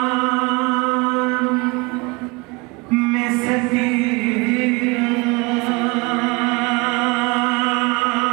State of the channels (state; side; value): quieter; left; 26.4 dB